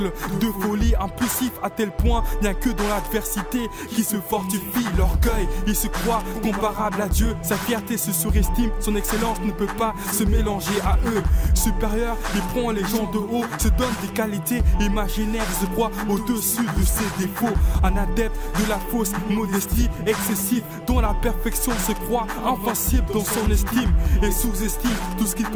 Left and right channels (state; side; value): identical; both; correlation 1.00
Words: de folie impulsif à tel point, bien que dans l'adversité qui se fortifie. L'orgueil, il se croit comparable à Dieu. Sa fierté se surestime, son excellence ne peut pas se mélanger à eux. Supérieur, il prend les gens de haut, se donne des qualités imaginaires, se croit au-dessus de ses défauts. Un adepte de la fausse modestie excessive, dont la perfection se croit invincible dans son estime et sous-estime tout ce qu'il